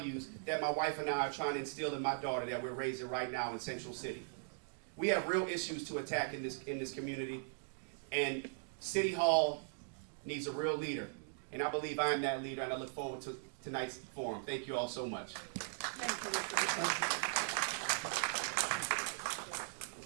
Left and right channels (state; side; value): silent; left; digital silence